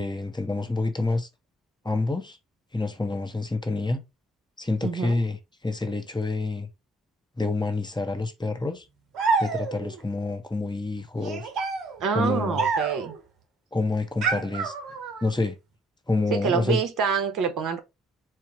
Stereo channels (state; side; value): normal; both; correlation 0.68